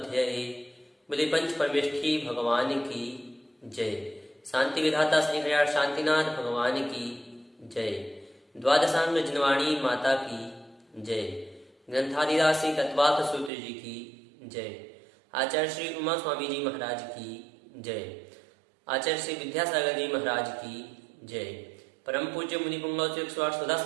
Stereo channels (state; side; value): drops out; left; at 13.5 s